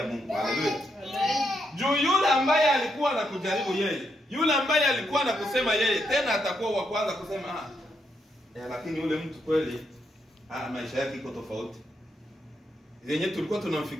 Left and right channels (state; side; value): normal; both; correlation 0.79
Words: Mungu. Haleluya. Juu yule ambaye alikuwa anakujaribu yeye, yule ambaye alikuwa anakusema yeye, tena atakuwa wa kwanza kusema lakini yule mtu kweli maisha yake iko tofauti. Yenye tulikuwa